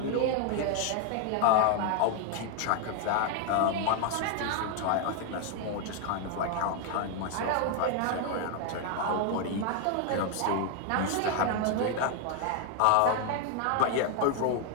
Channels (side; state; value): both; different; correlation 0.00